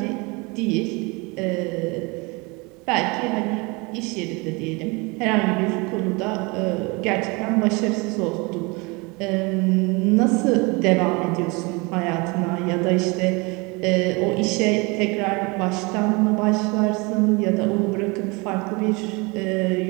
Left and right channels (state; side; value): quieter; left; 27.3 dB